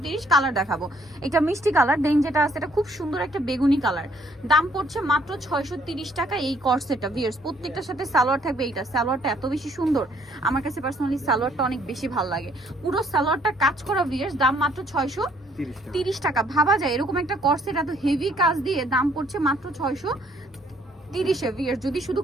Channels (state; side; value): normal; both; correlation 0.65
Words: কালার দেখাবো, এটা মিষ্টি কালার। দেন যেটা আছে এটা খুব সুন্দর একটা বেগুনি কালার। দাম পড়ছে মাত্র 630 টাকা এই কর্সেটটা ভিউয়ার্স। প্রত্যেকটার সাথে সালোয়ার থাকবে। এইটা সালোয়ারটা এত বেশি সুন্দর, আমার কাছে পার্সোনালি সালোয়ারটা অনেক বেশি ভালো লাগে। পুরো সালোয়ারটা কাজ করা ভিউয়ার্স। দাম মাত্র 630 টাকা। ভাবা যায় এরকম একটা কর্সেট এত হেভি কাজ দিয়ে দাম পড়ছে মাত্র 630 ভিউয়ার্স। যদি শুধু